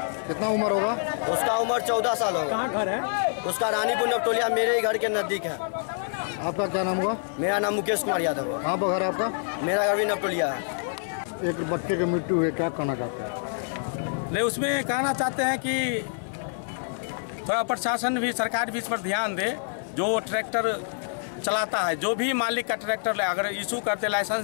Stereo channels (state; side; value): silent; right; 60 dB below the other